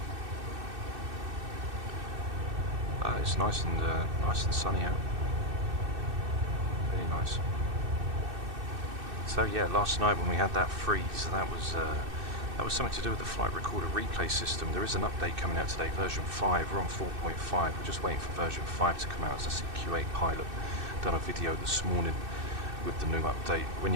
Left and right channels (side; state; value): left; late; 2.6 ms